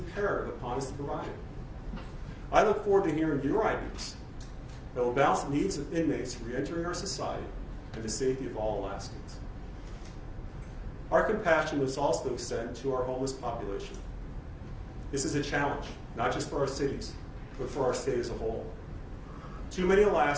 upon us to provide it. I look forward to hearing your ideas that will balance the needs of inmates re-entering our society and the safety of all Alaskans. Our compassion must also extend to our homeless population. This is a challenge, not just for our cities, but for our state as a whole. Too many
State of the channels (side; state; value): both; identical; correlation 1.00